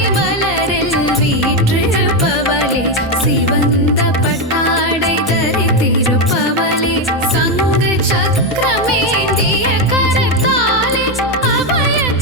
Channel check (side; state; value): both; normal; correlation 0.07